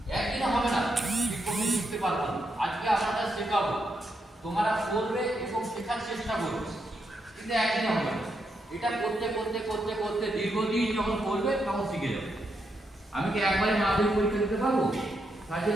একদিনে হবে না, কিক বক্সিং শিখতে পারবো না, আজকে আমরা শেখাবো, তোমরা করবে এবং শেখার চেষ্টা করবে, কিন্তু একদিনে হবে না। এটা করতে করতে করতে করতে দীর্ঘদিন যখন করবে তখন শিখে যাবে। আমি কি একবারে মাধ্যমিক পরীক্ষা দিতে পারবো? তার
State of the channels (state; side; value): normal; both; correlation 0.81